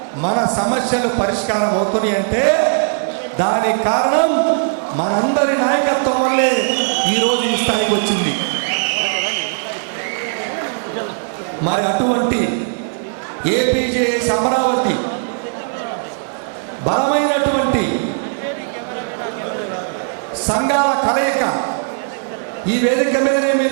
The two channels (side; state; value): left; silent; digital silence